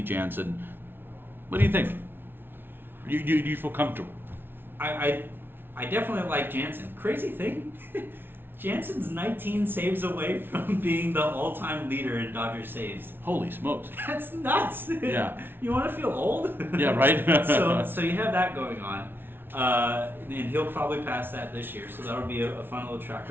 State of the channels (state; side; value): late; left; 0.10 ms